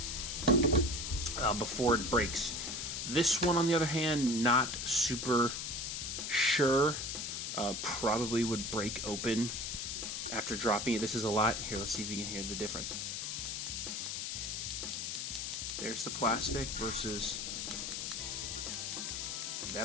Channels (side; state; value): left; noise; hiss, 4 dB below the sound